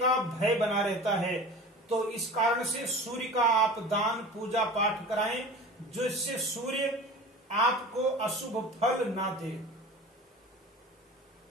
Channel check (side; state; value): both; normal; correlation 0.37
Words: भय बना रहता है। तो इस कारण से सूर्य का आप दान पूजा पाठ कराएं, जिससे सूर्य आपको अशुभ फल ना दे।